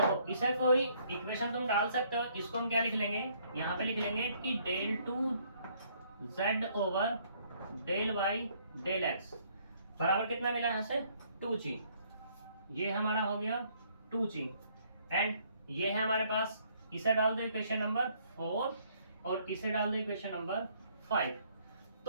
इसे कोई इक्वेशन तुम डाल सकते हो, इसको हम क्या लिख लेंगे, यहाँ पे लिख लेंगे कि del two z over del y del x बराबर कितना मिला यहाँ से 2g। ये हमारा हो गया 2g एंड ये है हमारे पास, इसे डाल दो इक्वेशन नंबर 4 और इसे डाल दो इक्वेशन नंबर 5।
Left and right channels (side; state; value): both; inverted; correlation -0.65